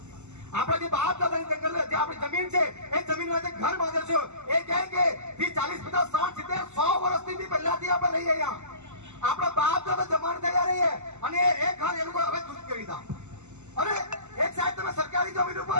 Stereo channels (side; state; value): left; late; 0.83 ms